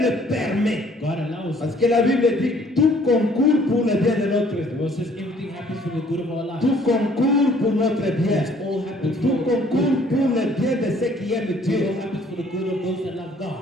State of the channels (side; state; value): both; normal; correlation 0.59